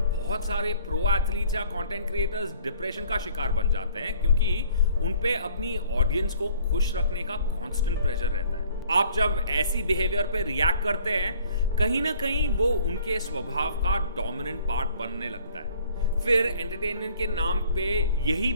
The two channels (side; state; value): both; inverted; correlation -0.56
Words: सारे प्रो एथलीट्स या कंटेंट क्रिएटर्स डिप्रेशन का शिकार बन जाते हैं क्योंकि उन पे अपनी ऑडियंस को खुश रखने का कांस्टेंट प्रेशर रहता है। आप जब ऐसी बिहेवियर पे रिएक्ट करते हैं, कहीं ना कहीं वो उनके स्वभाव का डोमिनेंट पार्ट बनने लगता है। फिर एंटरटेनमेंट के नाम पे यही